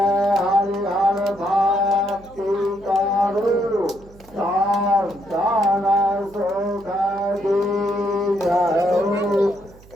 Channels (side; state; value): right; noise; hum, 23 dB below the sound